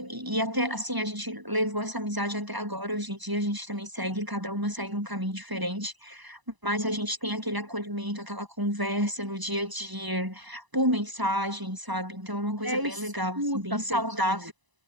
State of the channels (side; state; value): left; late; 1.0 ms